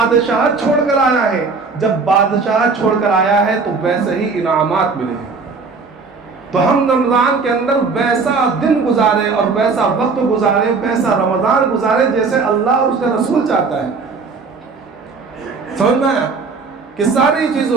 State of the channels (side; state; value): left; quieter; 4.5 dB